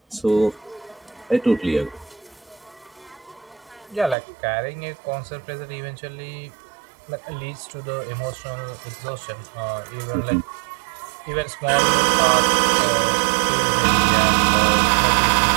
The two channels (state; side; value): drops out; left; at 4.2 s